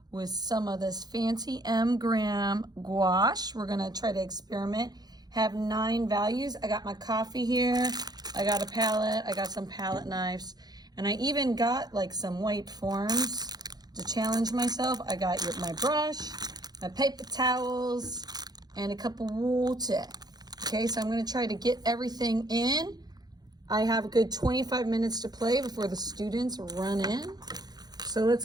with some of this fancy gram gouache. We're gonna try to experiment, have 9 values. I got my coffee here, I got a palette, I got some palette knives, and I even got like some white forms to challenge myself. I got my brush, my paper towels, and a cup of water. Okay, so I'm gonna try to get everything in. I have a good 25 minutes to play before the students run in. So let's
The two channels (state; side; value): late; left; 0.19 ms